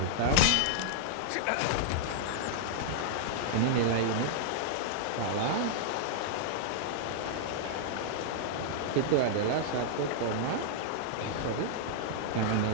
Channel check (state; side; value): different; both; correlation -0.01